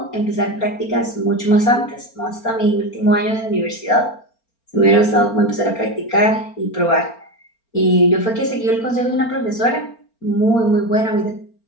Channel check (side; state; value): right; late; 4.4 ms